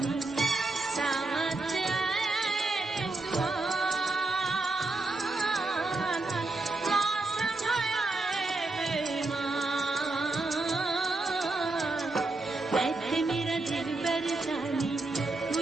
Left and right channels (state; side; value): quieter; left; 3.2 dB